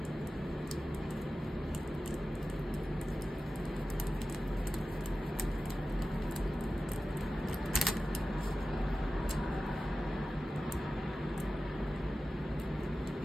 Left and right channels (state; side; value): normal; both; correlation 0.94